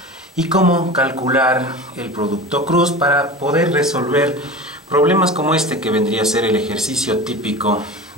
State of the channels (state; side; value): normal; both; correlation 0.32